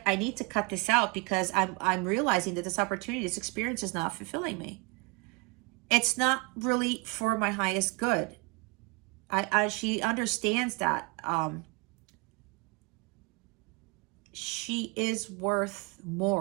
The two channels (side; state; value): left; quieter; 28.8 dB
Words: I need to cut this out, because I'm realizing that this opportunity, this experience is not fulfilling me. It's not really for my highest good. She understands that she is worth